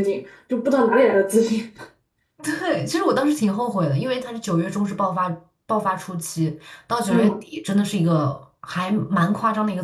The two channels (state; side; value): identical; both; correlation 1.00